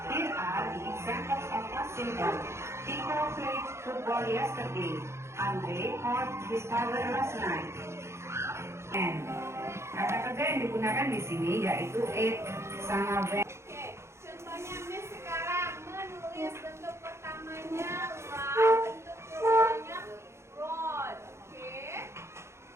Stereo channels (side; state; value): left; late; 0.13 ms